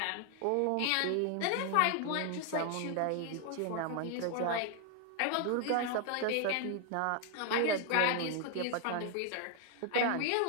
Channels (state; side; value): different; both; correlation 0.00